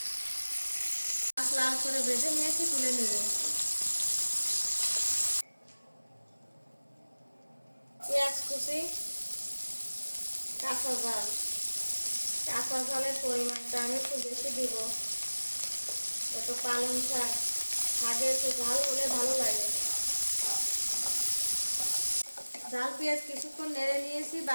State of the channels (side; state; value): both; inverted; correlation -1.00